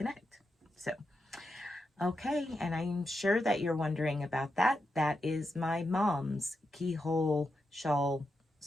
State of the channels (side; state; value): both; normal; correlation 0.86